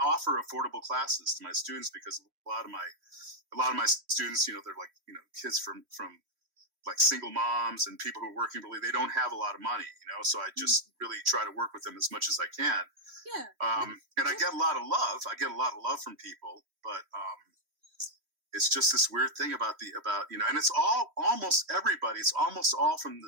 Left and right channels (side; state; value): left; late; 3.0 ms